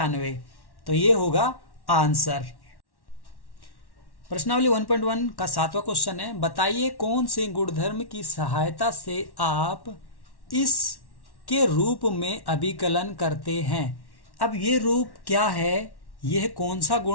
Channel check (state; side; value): late; right; 1.1 ms